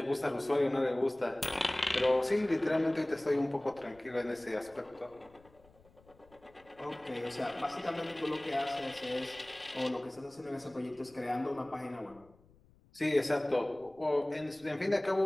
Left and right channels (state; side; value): noise; left; rumble, 28 dB below the sound